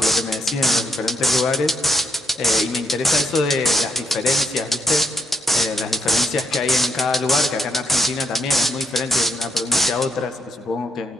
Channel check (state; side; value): normal; both; correlation 0.77